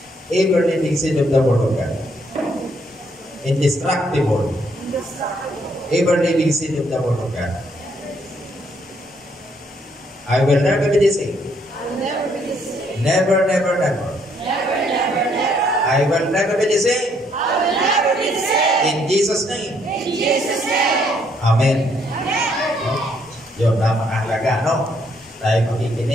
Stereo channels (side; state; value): both; normal; correlation 0.70